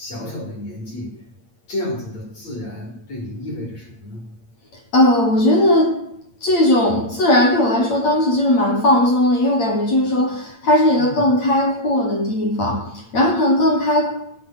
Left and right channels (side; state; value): right; late; 8.7 ms